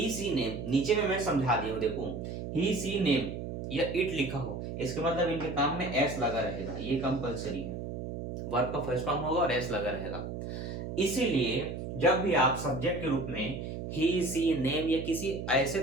सी नेम नीचे में मैं समझा दिया हूं, देखो ही सी नेम या इट लिखा हो, इसके मतलब इनके काम में एस लगा रहेगा, ये कंपलसरी है, वर्ब का फर्स्ट फॉर्म होगा और एस लगा रहेगा। इसीलिए जब भी आप सब्जेक्ट के रूप में ही सी नेम या किसी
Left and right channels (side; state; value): right; noise; hum, 6 dB below the sound